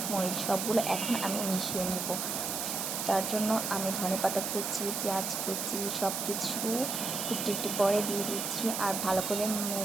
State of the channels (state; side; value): noise; right; hiss, 2 dB below the sound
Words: মরিচ সবগুলো এখন আমি মিশিয়ে নিব। তার জন্য আমি ধনেপাতা কুচি, পেঁয়াজ কুচি সব কিছু একটু একটু করে দিয়ে দিচ্ছি আর ভালো করে